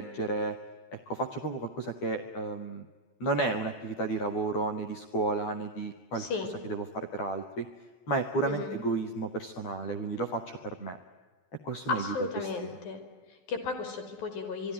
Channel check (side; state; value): right; late; 12 ms